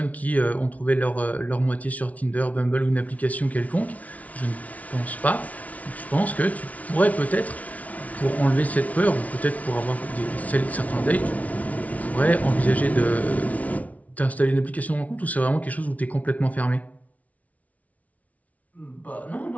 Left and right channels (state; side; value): late; right; 0.069 ms